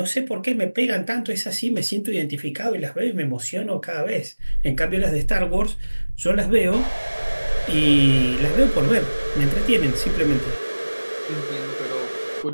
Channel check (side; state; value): both; inverted; correlation -1.00